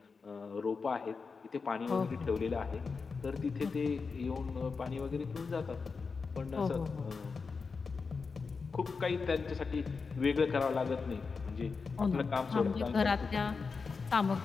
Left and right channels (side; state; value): right; quieter; 4.9 dB